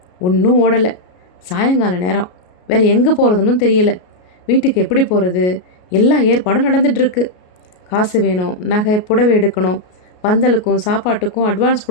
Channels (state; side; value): late; right; 33 ms